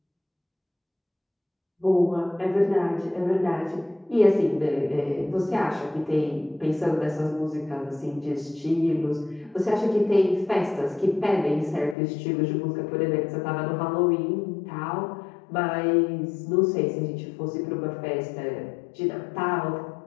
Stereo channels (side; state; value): right; drops out; at 12.0 s